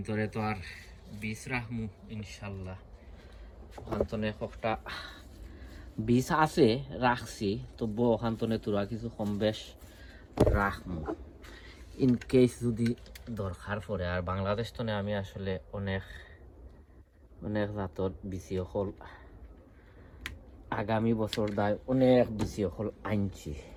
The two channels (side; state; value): both; identical; correlation 1.00